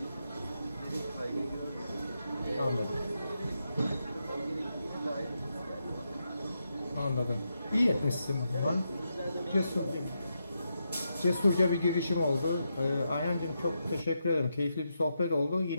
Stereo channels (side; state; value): both; inverted; correlation -0.84